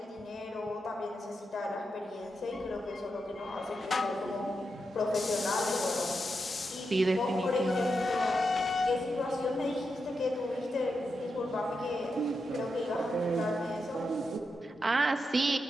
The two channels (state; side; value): normal; both; correlation 0.86